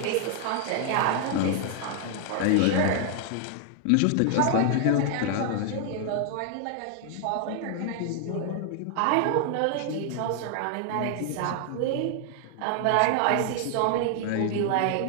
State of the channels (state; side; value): different; both; correlation 0.00